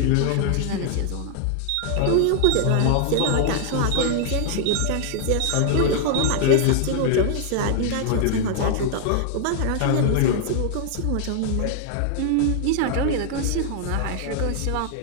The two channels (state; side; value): different; both; correlation 0.00